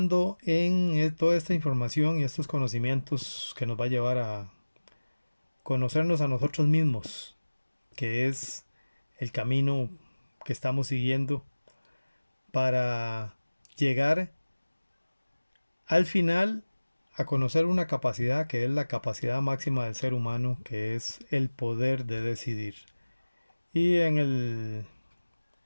en toda esta información y estos conocimientos que nos va a llevar a conocernos a nosotros mismos, que es el camino que estamos siguiendo para llegar al final a conocer una capacidad que es la capacidad máxima del ser humano, que es el poder de decidir. Y en el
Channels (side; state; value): both; inverted; correlation -1.00